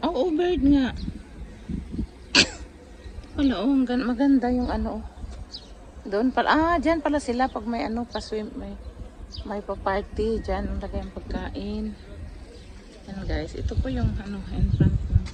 bird nga. Wala, oh, maganda yung ano. Doon pala. Ah, dyan pala sila pag may ano, pa-swim, may pa-party. Dyan, ang lagay ang pagkain. Yan, guys. Ito po yung ano, in front ng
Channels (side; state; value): both; identical; correlation 1.00